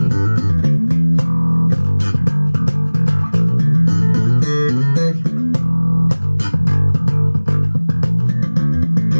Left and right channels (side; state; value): both; inverted; correlation -1.00